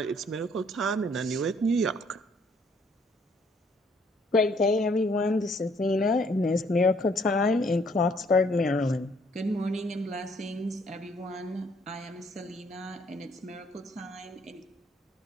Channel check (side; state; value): both; normal; correlation 0.64